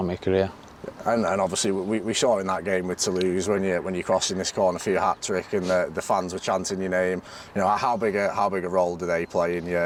my career. And obviously we saw in that game with Toulouse when you're crossing this corner for your hat trick and the fans were chanting your name. How big a role do they play in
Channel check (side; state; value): both; identical; correlation 1.00